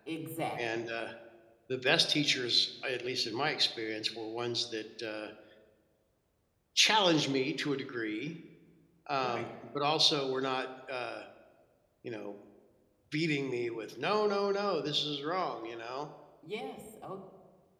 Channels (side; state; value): both; identical; correlation 1.00